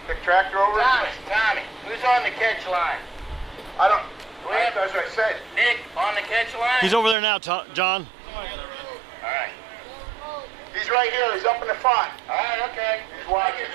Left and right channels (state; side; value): drops out; left; at 7.2 s